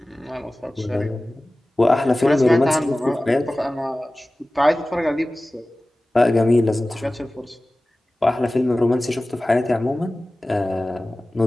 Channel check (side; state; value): both; normal; correlation 0.97